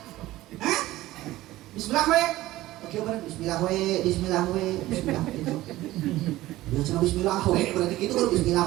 hah bismillah we oke bener bismillah we itu ya cenah bismillah we berarti kitu kudu bismillah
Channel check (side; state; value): left; quieter; 16.5 dB